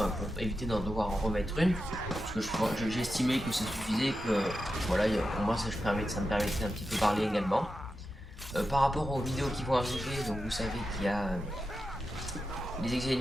pour éviter d'en devoir en remettre une, parce que j'estimais que ça suffisait, que voilà, pour moi ça me permettait un petit peu parler également. Par rapport aux vidéos qui vont arriver, donc vous savez qu'il y a les exilés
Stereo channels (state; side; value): normal; both; correlation 0.90